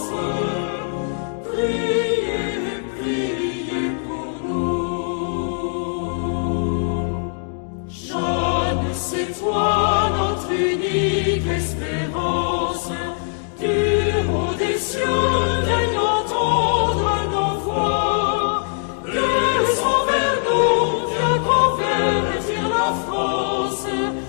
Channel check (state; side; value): silent; right; digital silence